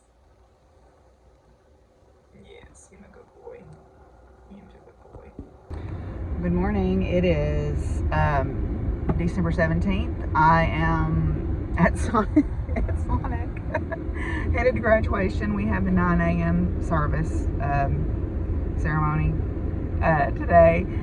Yes, you're a good boy. You're a good boy. Good morning. It is December 17th. I am at Sonic, headed to graduation. We have the 9 a.m. service ceremony today.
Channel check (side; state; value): both; identical; correlation 1.00